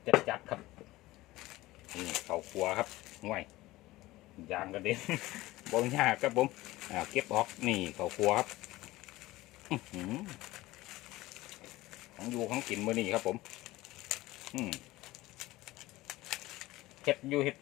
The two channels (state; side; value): quieter; right; 18.3 dB